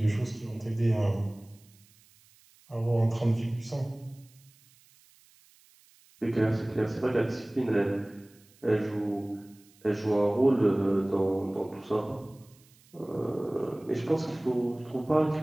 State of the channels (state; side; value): noise; right; hiss, 29 dB below the sound